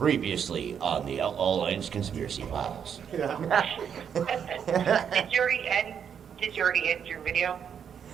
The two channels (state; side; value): quieter; left; 7.9 dB